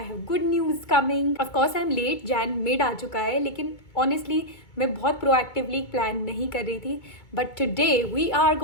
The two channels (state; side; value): late; right; 2.2 ms